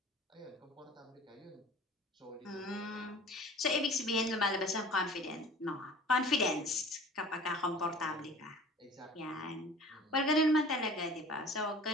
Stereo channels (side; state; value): both; normal; correlation 0.44